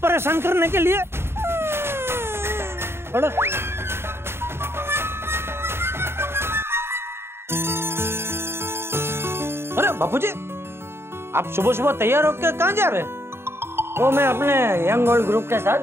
परेशान करने के लिए? अरे बापूजी, आप सुबह सुबह तैयार होकर कहाँ जा रहे हैं? वो मैं अपने यंग ओल्ड ग्रुप के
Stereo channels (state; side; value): late; left; 0.12 ms